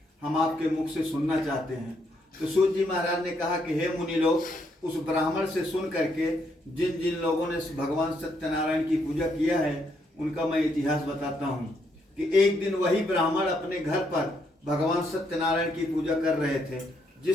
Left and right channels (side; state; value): both; normal; correlation 0.75